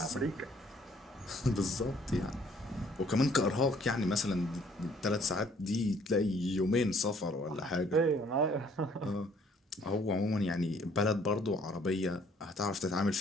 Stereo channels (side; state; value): both; normal; correlation 0.61